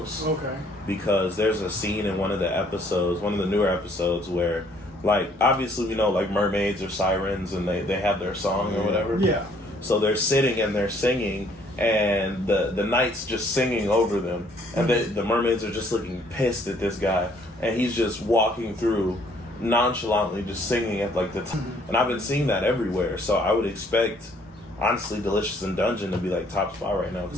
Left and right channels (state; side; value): normal; both; correlation 0.63